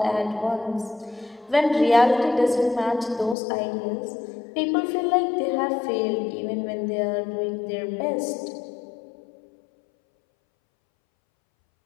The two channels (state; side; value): drops out; right; at 3.4 s